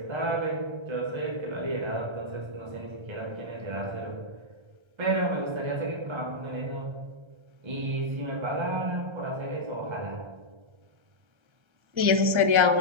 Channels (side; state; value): left; late; 1.3 ms